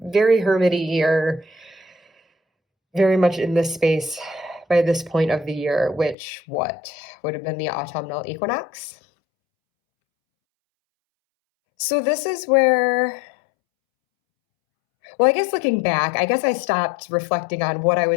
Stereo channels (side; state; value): right; drops out; at 6.2 s